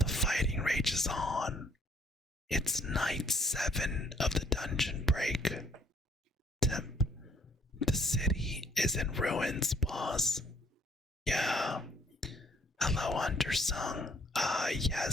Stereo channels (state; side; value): normal; both; correlation 0.64